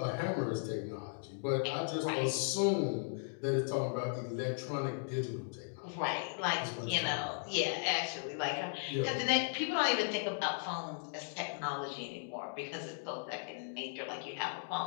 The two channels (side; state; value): right; silent; digital silence